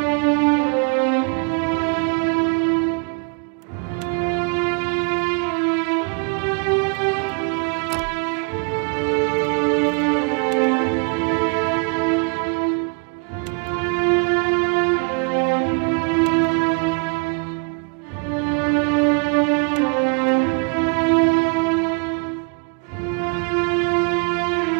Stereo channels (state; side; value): quieter; left; 36.4 dB